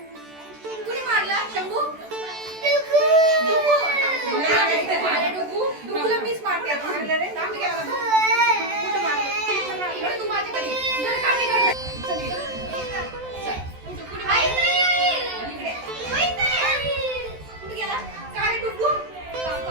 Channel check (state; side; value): late; left; 14 ms